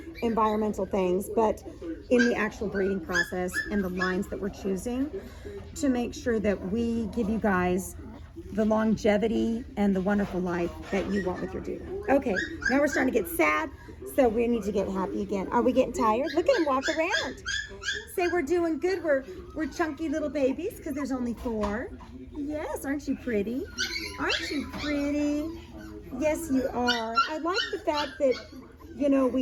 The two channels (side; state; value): both; identical; correlation 1.00